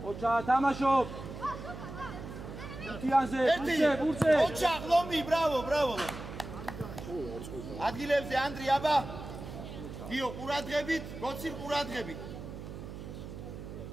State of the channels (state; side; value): noise; right; hum, 10 dB below the sound